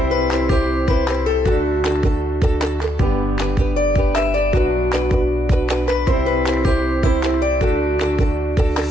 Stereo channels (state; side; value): normal; both; correlation 0.78